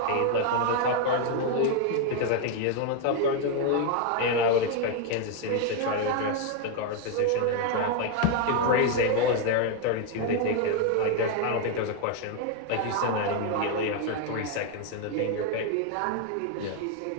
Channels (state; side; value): different; both; correlation 0.01